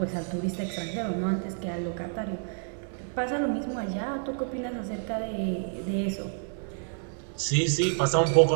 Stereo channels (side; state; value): left; silent; 59 dB below the other